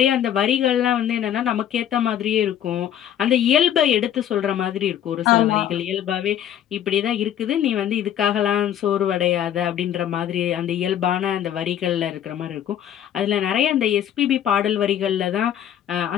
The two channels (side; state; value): right; quieter; 10.4 dB